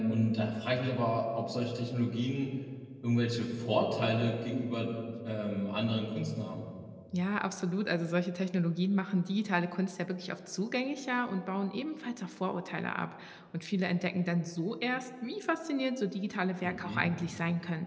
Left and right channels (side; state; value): both; identical; correlation 1.00